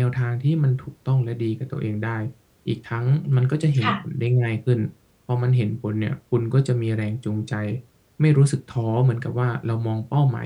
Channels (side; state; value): both; identical; correlation 1.00